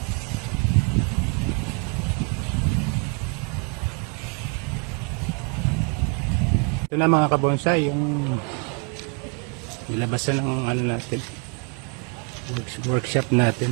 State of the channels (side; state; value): left; quieter; 35.4 dB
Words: Ito na mga kabonsai, yung nilabasan ng ano natin, workshop